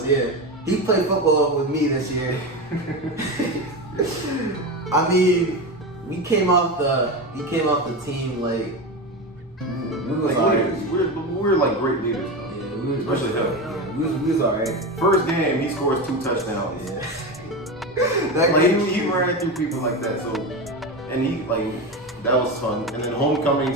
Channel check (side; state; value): both; normal; correlation 0.20